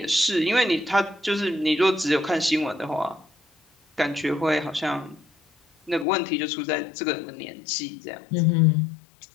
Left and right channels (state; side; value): drops out; right; at 6.1 s